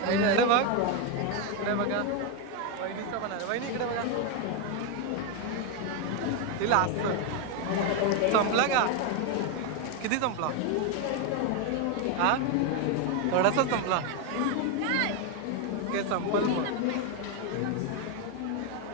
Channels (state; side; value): different; both; correlation 0.02